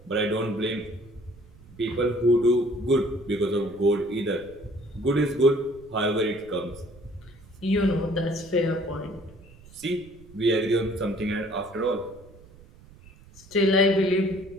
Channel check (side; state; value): right; noise; rumble, 22 dB below the sound